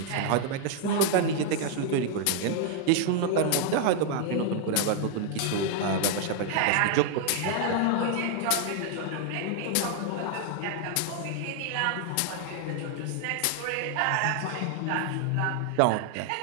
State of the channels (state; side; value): different; both; correlation 0.00